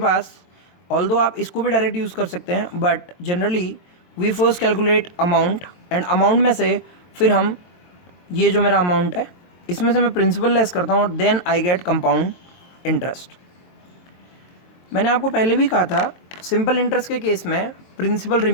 ऑल्दो आप इसको भी डायरेक्ट यूज़ कर सकते हैं, but generally we first calculate amount, and amount में से फिर हम ये जो मेरा अमाउंट है इसमें से मैं प्रिंसिपल लेस करता हूँ, then I get compound interest. मैंने आपको पहले भी कहा था सिंपल इंटरेस्ट के केस में प्रिंसिपल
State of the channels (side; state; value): right; late; 23 ms